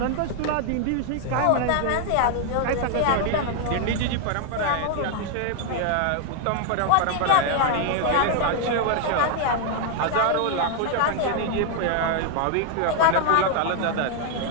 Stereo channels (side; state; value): both; different; correlation 0.00